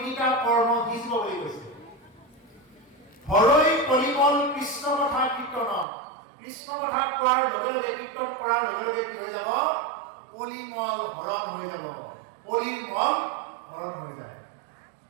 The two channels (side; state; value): left; drops out; at 5.9 s